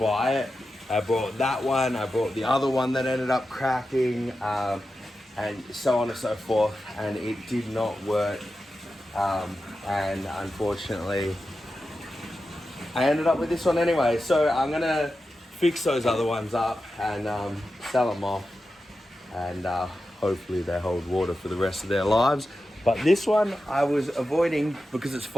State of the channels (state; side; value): normal; both; correlation 0.91